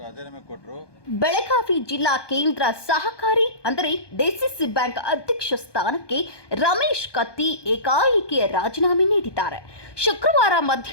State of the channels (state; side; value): late; right; 1.2 ms